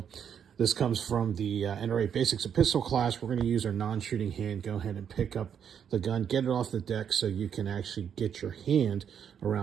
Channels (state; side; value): quieter; left; 8.1 dB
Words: this comes from the NRA Basics of Pistol class. We're going to use our non-shooting hand. Go ahead and pick up the gun, get it off the deck so you can actually get your hand